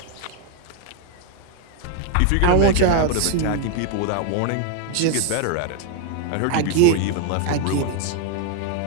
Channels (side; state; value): both; different; correlation 0.00